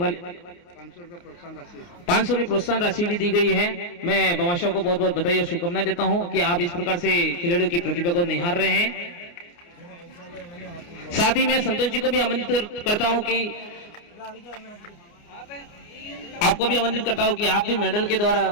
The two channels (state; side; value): late; right; 29 ms